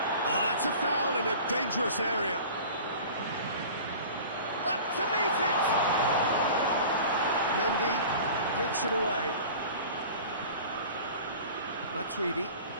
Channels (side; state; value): both; inverted; correlation -0.40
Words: that's a foul in a dangerous area. Up to meet it! Mendy gets it away. Matuidi.